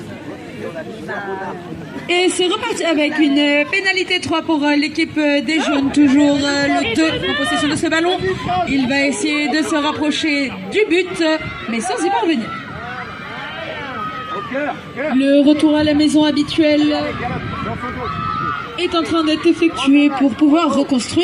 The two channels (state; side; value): identical; both; correlation 1.00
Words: Et c'est reparti avec une pénalité 3 pour l'équipe des jaunes. Toujours le 2 en possession de ce ballon. Il va essayer de se rapprocher du but, mais sans y parvenir. Le retour à la maison habituel est en train d'être effectué pour pouvoir